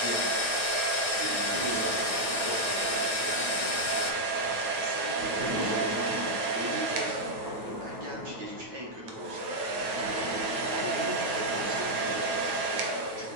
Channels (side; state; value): left; late; 9.1 ms